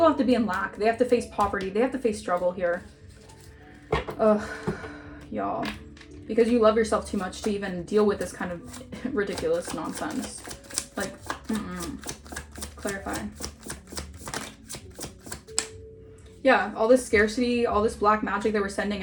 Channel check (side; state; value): both; identical; correlation 1.00